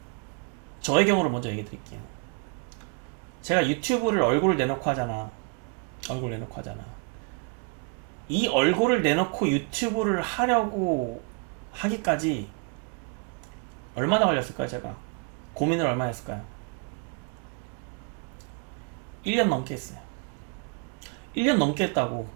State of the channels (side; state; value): left; quieter; 34.3 dB